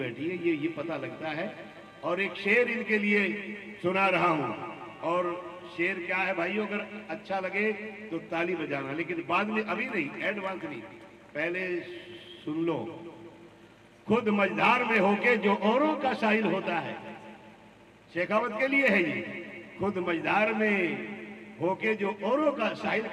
है, ये पता लगता है। और एक शेर इनके लिए सुना रहा हूं, और शेर क्या है भाइयों, अगर अच्छा लगे तो ताली बजाना, लेकिन बाद में, अभी नहीं, एडवांस नहीं, पहले सुन लो। खुद मझधार में होके जो औरों का साहिल होता है, शेखावत के लिए है ये। खुद मझधार में होके जो औरों का साहिल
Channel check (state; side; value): identical; both; correlation 1.00